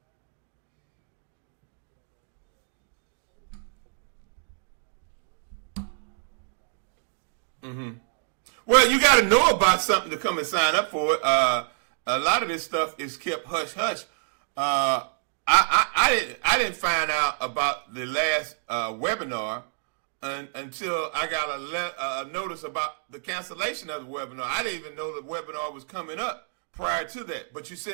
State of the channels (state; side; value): silent; left; digital silence